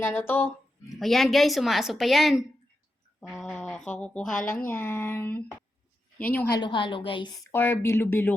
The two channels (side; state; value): both; normal; correlation 0.88